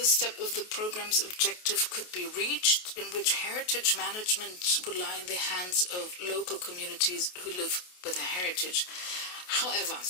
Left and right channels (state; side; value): late; right; 28 ms